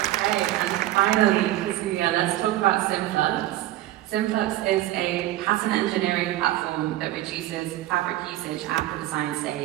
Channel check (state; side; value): quieter; left; 15.1 dB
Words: And finally, Kazuya, let's talk about Synflux. Synflux is a pattern engineering platform that reduces fabric usage at the design